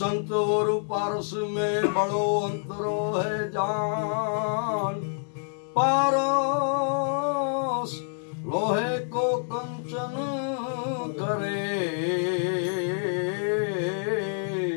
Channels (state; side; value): silent; right; digital silence